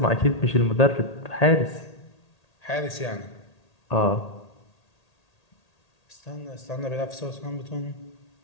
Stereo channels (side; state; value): right; late; 1.8 ms